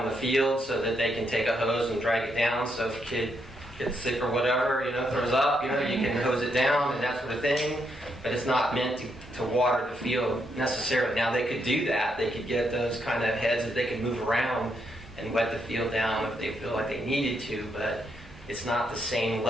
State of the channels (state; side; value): normal; both; correlation 0.78